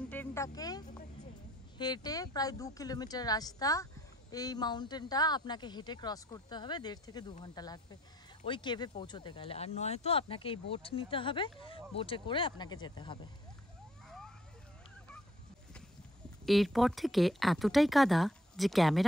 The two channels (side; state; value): both; normal; correlation 0.63